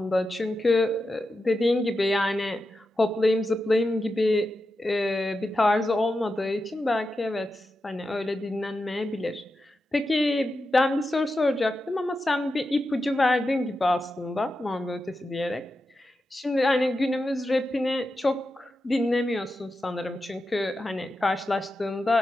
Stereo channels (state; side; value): normal; both; correlation 0.90